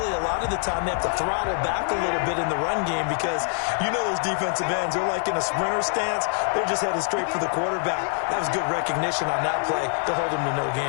a lot of the time, they have to throttle back a little bit in the run game because you know those defensive ends, they're like in a sprinter stance. They're just headed straight for the quarterback. That was good recognition on that play to hold them to no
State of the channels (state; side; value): silent; right; 56 dB below the other